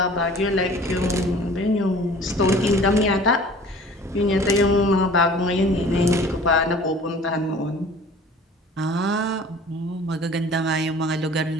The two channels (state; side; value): normal; both; correlation 0.47